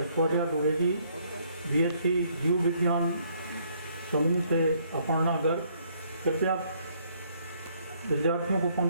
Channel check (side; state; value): both; inverted; correlation -0.67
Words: द्विवेदी, BSc जीव विज्ञान समूह से अपर्णा गर्ग। कृपया विद्यार्थियों को